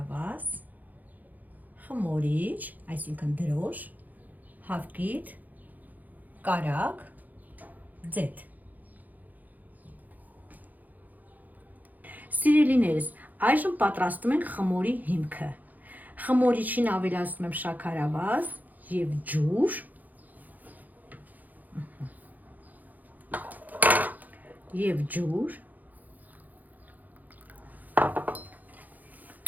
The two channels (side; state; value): left; late; 0.082 ms